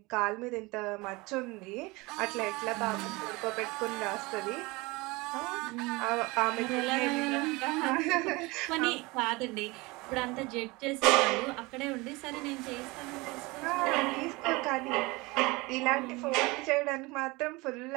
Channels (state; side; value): quieter; left; 23.8 dB